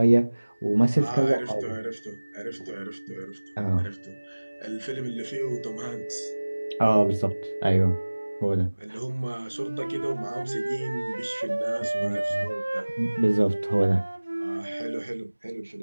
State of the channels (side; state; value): both; inverted; correlation -1.00